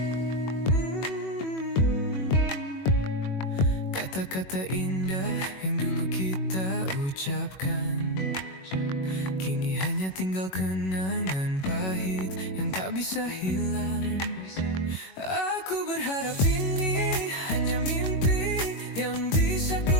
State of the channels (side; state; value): right; late; 21 ms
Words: Kata-kata indah yang dulu kita ucapkan, kini hanya tinggal kenangan pahit yang tak bisa hilang. Aku berharap ini hanya mimpi yang bisa ku